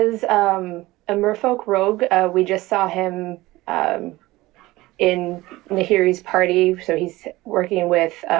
a merfolk rogue. We just saw him in Nahiri's party, so he's working with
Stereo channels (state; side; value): quieter; left; 19.0 dB